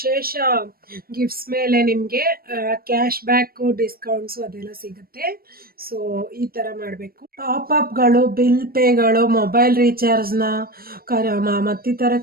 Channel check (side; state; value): left; late; 0.44 ms